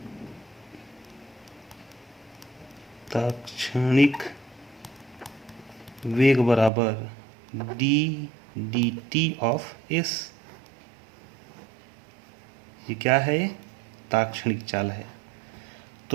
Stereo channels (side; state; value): left; drops out; at 6.7 s